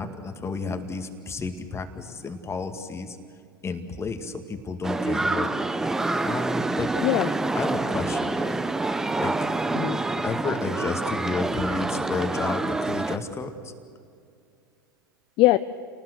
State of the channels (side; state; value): both; normal; correlation 0.67